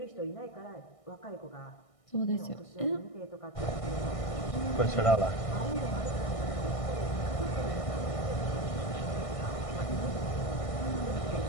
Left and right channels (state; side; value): late; right; 1.6 ms